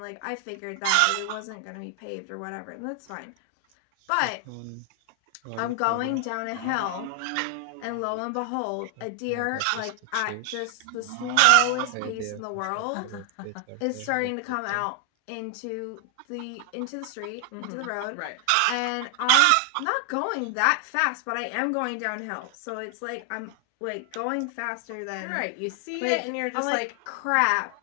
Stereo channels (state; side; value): different; both; correlation 0.00